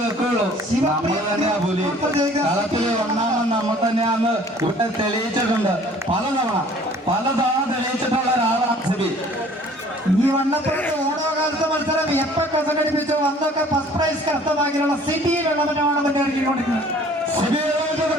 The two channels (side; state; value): both; normal; correlation 0.53